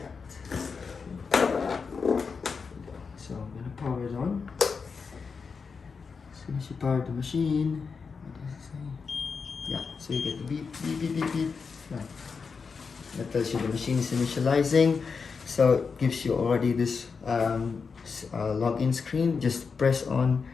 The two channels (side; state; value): right; quieter; 5.3 dB